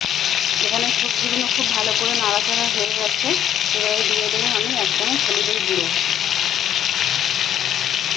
এখানে সবজিগুলো খুব ভালো করে নাড়াচাড়া হয়ে গেছে। এবারে দিয়ে দেবো আমি এক চামচ হলুদের গুঁড়ো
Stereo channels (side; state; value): right; quieter; 10.2 dB